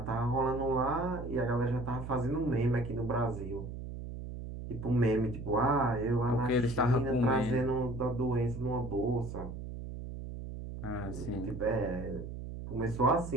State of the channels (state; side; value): noise; right; hum, 8 dB below the sound